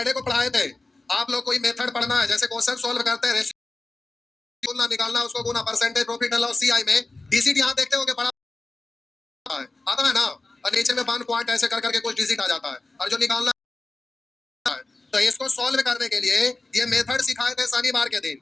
को पढ़ाए थे आप लोग। कोई मेथड पढ़ना है, जैसे क्वेश्चन सॉल्व करते हैं, रेशियो निकालना, उसको गुना, percentage, profit and loss, CI में डिजिट यहाँ देखते हो कि बड़ा है, आता है ना, और नीचे में 1 पॉइंट ऐसे कर करके कुछ डिजिट आ जाता है, और जो निकालना है। तो इसको सॉल्व करने के लिए ये मेथड सिखाए थे शनिवार के दिन।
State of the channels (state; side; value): quieter; right; 3.1 dB